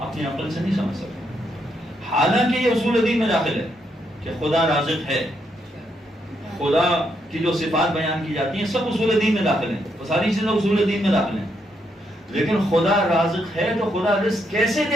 عقل سے نہیں سمجھ سکتے. حالانکہ یہ اصول دین میں داخل ہے کہ خدا رازق ہے, خدا کی جو صفات بیان کی جاتی ہیں سب اصول دین میں داخل ہیں, وہ ساری چیزیں اصول دین میں داخل ہیں. لیکن خدا رازق ہے تو خدا رزق کیسے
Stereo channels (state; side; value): normal; both; correlation 0.78